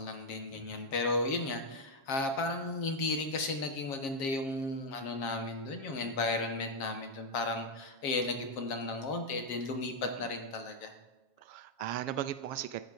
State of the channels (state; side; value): late; right; 7.4 ms